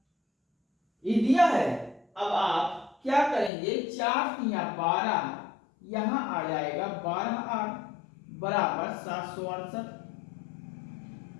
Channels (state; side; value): drops out; right; at 3.5 s